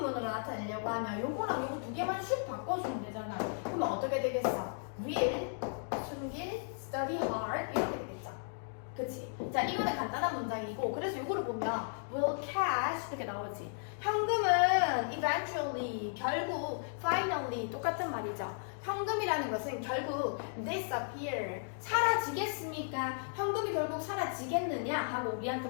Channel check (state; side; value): silent; right; digital silence